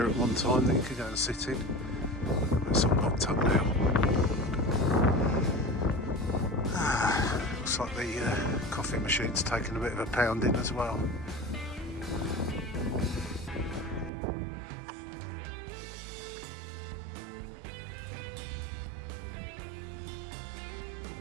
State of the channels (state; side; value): drops out; left; at 14.1 s